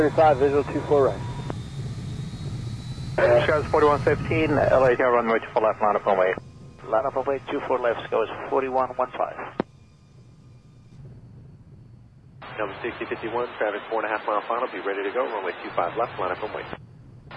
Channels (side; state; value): both; identical; correlation 1.00